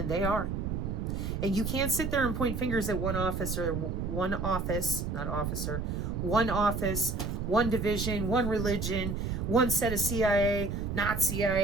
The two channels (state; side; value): noise; right; rumble, 2 dB below the sound